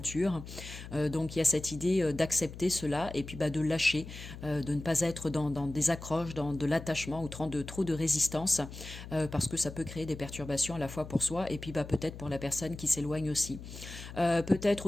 Donc il y a cette idée d'accepter cela et puis de lâcher, de ne pas être dans des accroches, dans de l'attachement ou trop de résistance, parce que ça peut créer des perturbations à la fois pour soi et puis peut-être pour la personne qui s'éloigne aussi. Peut-être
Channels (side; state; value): left; noise; hum, 12 dB below the sound